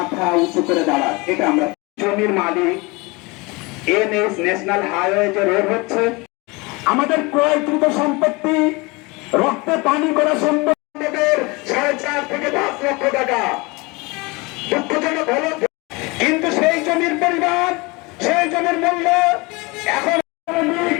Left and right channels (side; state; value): right; quieter; 25.6 dB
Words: উঁচু করে দাঁড়ায়। এটা আমরা জমির মালিক এনএস ন্যাশনাল হাইওয়ে যে রোড হচ্ছে, আমাদের ক্রয়কৃত সম্পত্তি রক্তে পানি করা সম্পত্তির 4.5 থেকে 10 লক্ষ টাকা। দুঃখজনক হলো কিন্তু সেই জমির পরিমাণ, সেই জমির মূল্য এখন